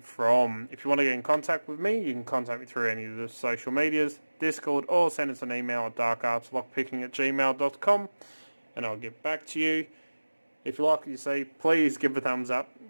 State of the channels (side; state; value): both; inverted; correlation -1.00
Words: from. If you want to get in contact with me, you can contact me through any of the social medias, Discord, or send us an email at darkartslockpicking@gmail.com, and I'll get back to you. If you like what you see, please give a thumbs up,